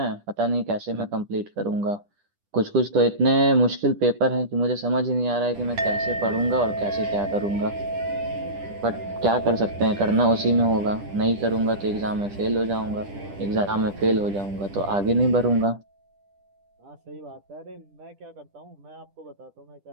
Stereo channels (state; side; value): late; left; 10 ms